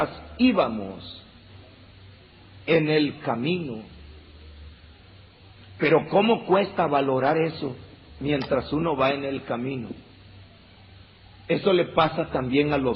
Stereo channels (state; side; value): identical; both; correlation 1.00